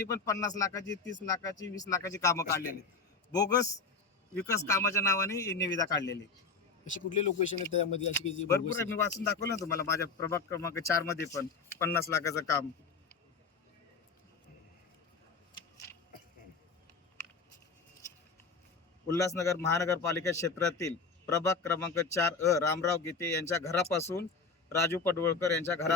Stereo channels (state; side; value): quieter; right; 4.6 dB